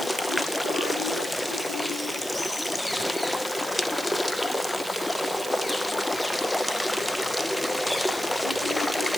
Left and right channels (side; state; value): right; noise; hiss, 12 dB below the sound